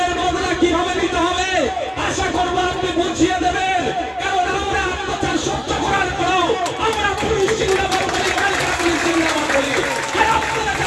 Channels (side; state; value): both; identical; correlation 1.00